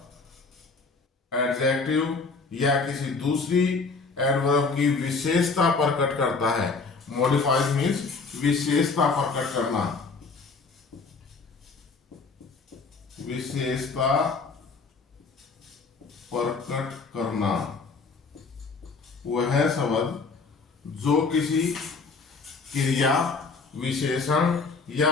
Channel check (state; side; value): quieter; right; 4.4 dB